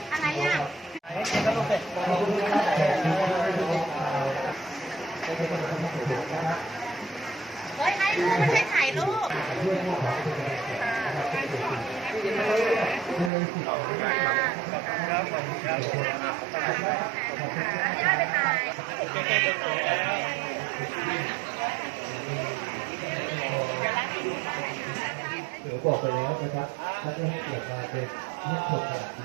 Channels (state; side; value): drops out; left; at 13.3 s